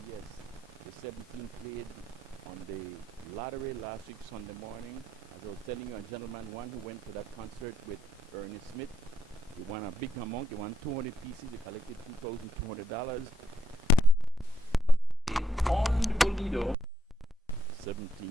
yes. The 17 played on the lottery last week Sunday morning. As I was telling you, a gentleman, one who went to that concert with Ernest Smith, he won a big amount. He won 200 pieces. He collected $2,200. On the Bolido,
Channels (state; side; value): normal; both; correlation 0.78